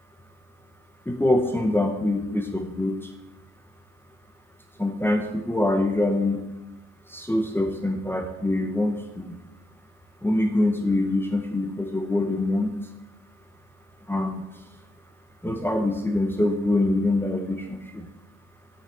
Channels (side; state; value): both; normal; correlation 0.86